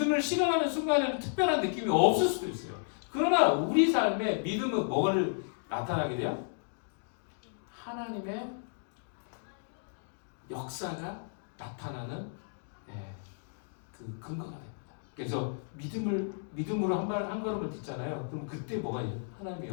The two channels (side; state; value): right; silent; digital silence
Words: 실현하는 순간에는 특별한 느낌이 없을 수도 있어요. 그러나 우리 삶에 믿음은 뭐를 나타나게 돼요? 하나님의 역사가 나타나는 그 근거가 됩니다. 그래서 믿음으로 한 걸음을 딛잖아요. 그럼 그때 뭐가 있어요? 하나님의